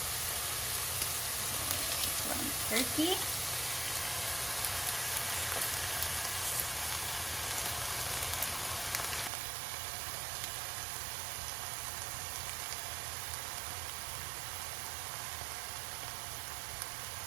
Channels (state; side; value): drops out; left; at 9.3 s